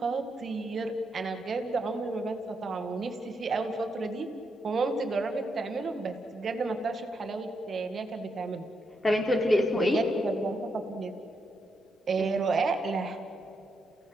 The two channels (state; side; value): normal; both; correlation 0.81